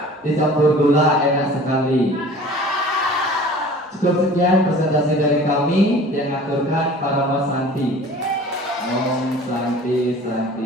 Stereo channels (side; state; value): both; normal; correlation 0.45